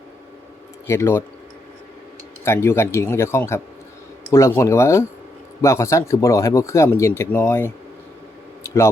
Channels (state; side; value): normal; both; correlation 0.79